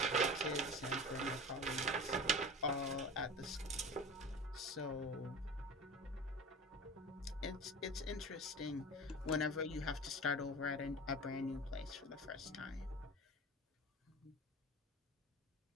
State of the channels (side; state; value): both; normal; correlation 0.34